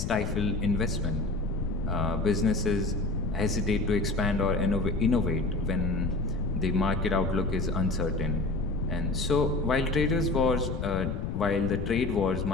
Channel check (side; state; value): left; noise; rumble, 3 dB below the sound